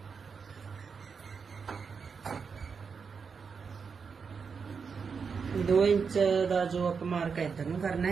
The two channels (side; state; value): left; quieter; 5.7 dB